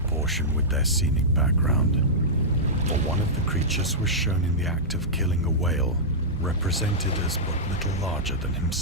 with their scenic background, for one of the creatures was shown in the act of killing a whale, represented as but little larger than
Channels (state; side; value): normal; both; correlation -0.11